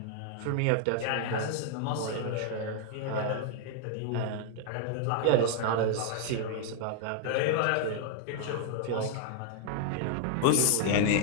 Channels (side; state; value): both; different; correlation 0.00